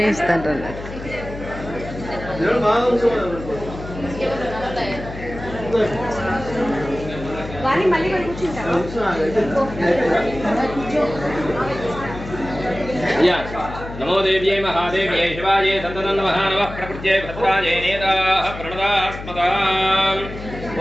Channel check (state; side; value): noise; left; hum, 11 dB below the sound